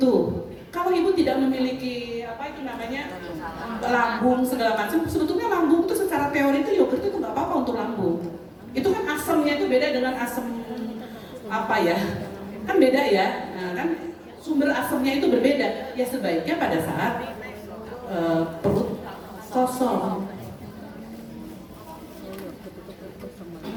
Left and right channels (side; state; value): both; identical; correlation 1.00